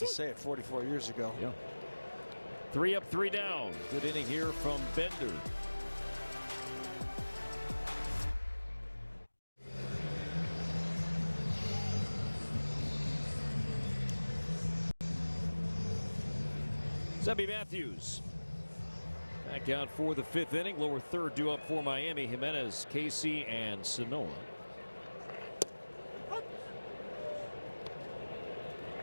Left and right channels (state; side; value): inverted; both; correlation -1.00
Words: say it, 44 years ago. Yeah. 3 up, 3 down. Good inning here from Bender. Zebby Matthews back out for the 5th inning. Lower third due up for Miami. Jimenez, Casey, and Sanoa.